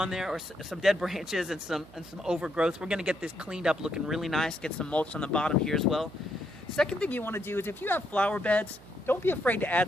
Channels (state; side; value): noise; right; hum, 22 dB below the sound